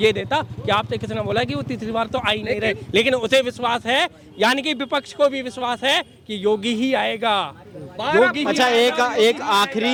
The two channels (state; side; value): identical; both; correlation 1.00